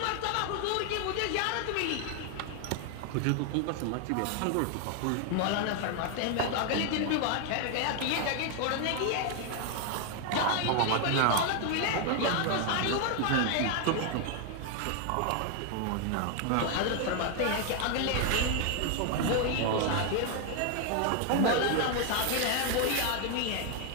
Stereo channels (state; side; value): different; both; correlation 0.00